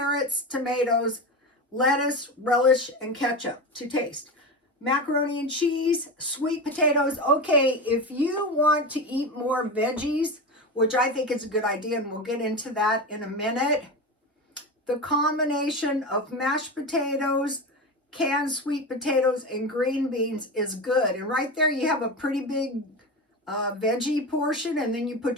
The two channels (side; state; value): both; normal; correlation 0.23